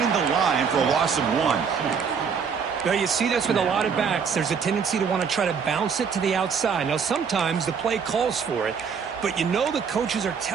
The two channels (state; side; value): quieter; left; 6.4 dB